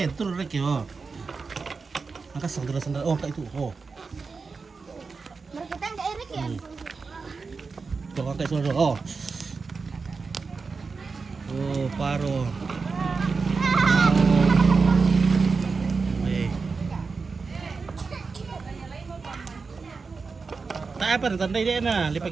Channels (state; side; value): quieter; left; 4.6 dB